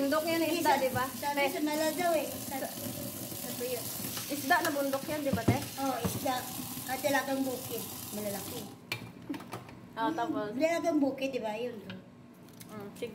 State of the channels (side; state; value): both; identical; correlation 1.00